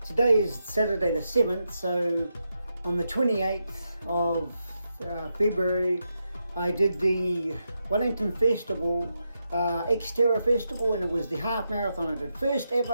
is Saturday the 7th, so on the 28th of February, I did the Wellington Festival, XTERRA Festival, and it was the half marathon I did. First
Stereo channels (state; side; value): inverted; both; correlation -0.85